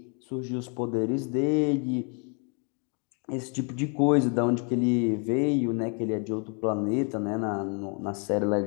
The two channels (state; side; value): quieter; right; 38.3 dB